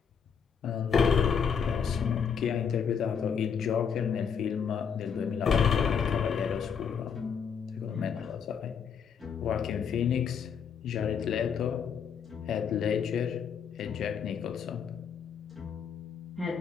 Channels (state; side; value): quieter; right; 6.9 dB